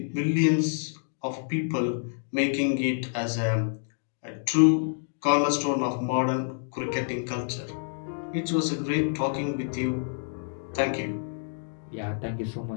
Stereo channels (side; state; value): right; silent; digital silence